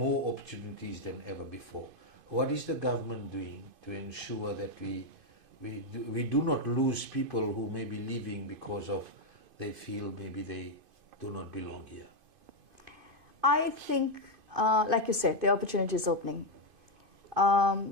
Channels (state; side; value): late; left; 2.5 ms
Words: opportunities than ever before. What is the government doing to ensure that we do not lose people who may be leaving because of they feel maybe they do not belong here? I think, like you said, the opportunity is opening.